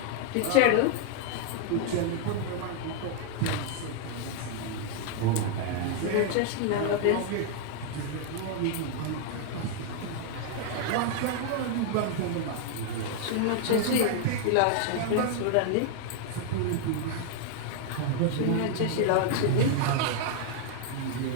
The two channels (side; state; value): both; different; correlation 0.00